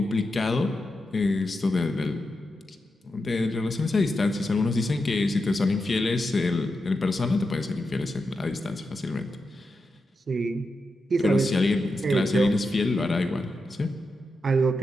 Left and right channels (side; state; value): both; normal; correlation 0.88